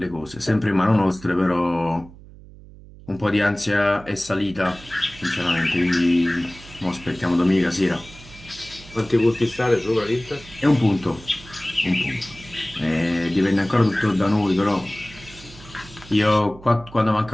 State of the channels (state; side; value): noise; right; hum, 20 dB below the sound